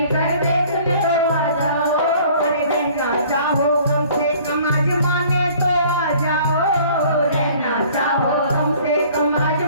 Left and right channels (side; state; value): both; inverted; correlation -0.53